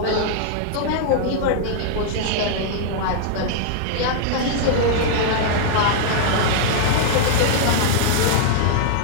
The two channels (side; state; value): both; different; correlation -0.01